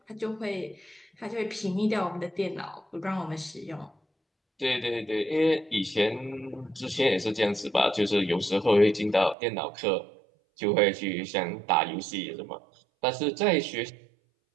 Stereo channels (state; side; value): drops out; left; at 9.3 s